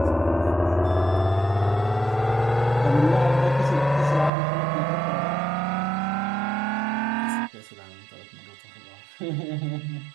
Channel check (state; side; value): drops out; left; at 4.3 s